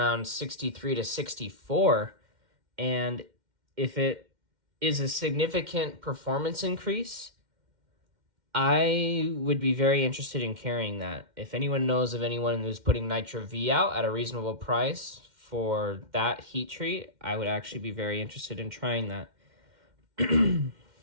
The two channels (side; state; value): left; late; 2.1 ms